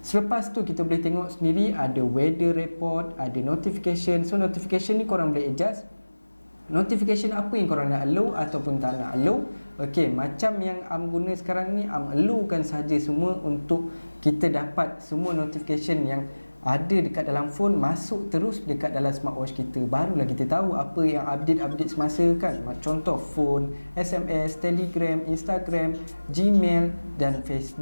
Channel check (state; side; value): inverted; both; correlation -1.00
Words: selepas tu kita boleh tengok sendiri ada weather report, ada notification. So notification ni korang boleh adjust notification apa yang korang nak allow ataupun tak nak allow. Okey, macam yang Am guna sekarang ni, Am allowkan saja semua untuk kita dapat semua notification yang ada dekat dalam phone masuk terus dekat dalam smartwatch kita. Barulah kita tahu apa yang update semasa kan. Contoh phone, SMS, Telegram, Instagram, Gmail dan